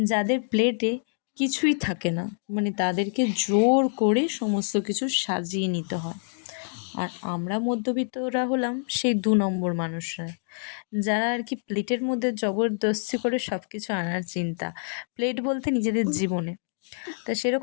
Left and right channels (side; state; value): right; silent; digital silence